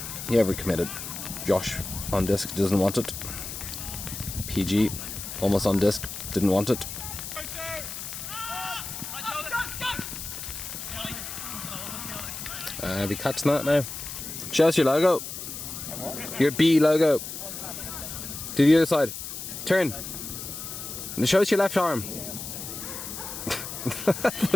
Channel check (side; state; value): left; noise; hiss, 8 dB below the sound